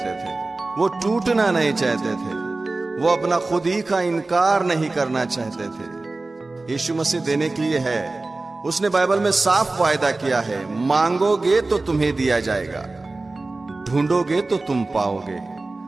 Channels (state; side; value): quieter; left; 3.3 dB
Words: थे, वो टूटना नहीं चाहते थे, वो अपना खुद ही का इनकार नहीं करना चाहते थे। यीशु मसीह देने के लिए है। उसने बाइबल में साफ वायदा किया है, मांगोगे तो तुम्हें दिया जाएगा, ढूंढोगे तो तुम पाओगे,